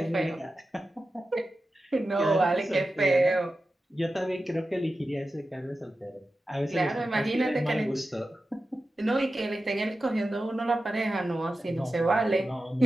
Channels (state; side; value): normal; both; correlation 0.93